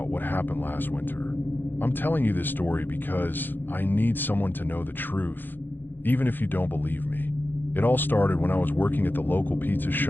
what happened last winter. I'm telling you this story because I need someone to know the truth, even if you don't believe me. It all started when I was working at the local pizza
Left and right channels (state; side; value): late; right; 0.093 ms